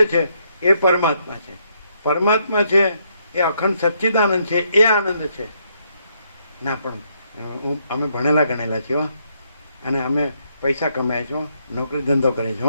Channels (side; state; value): both; inverted; correlation -0.74